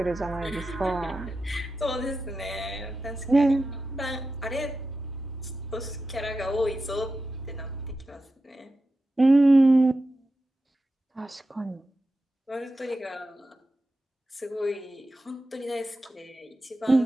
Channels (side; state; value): both; normal; correlation 0.91